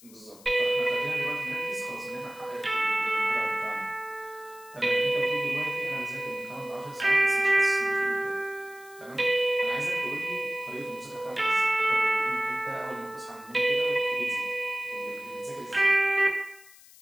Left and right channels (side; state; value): left; noise; hiss, 23 dB below the sound